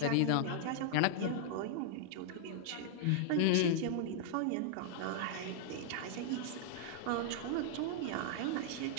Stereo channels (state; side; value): different; both; correlation -0.01